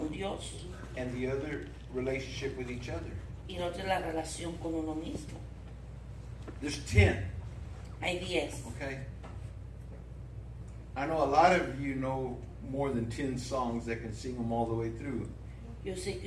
Dios And the other relationship with each other. y el otro es la relación con uno mismo. There's 10. Hay 10. Okay. I know a lot of you know more than 10 songs that can sing them all the way through. Yo sé que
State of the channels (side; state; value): both; identical; correlation 1.00